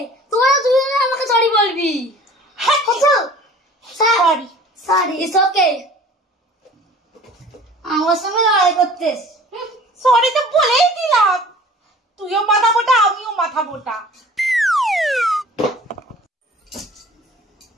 তুই আমাকে সরি বলবি। Sorry sorry, it's okay. আমার সঙ্গে লড়াই করতেস। সরি তো বলেই দিলাম, তুইও মাথা মোটা আমিও মাথা মোটা।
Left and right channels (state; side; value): normal; both; correlation 0.46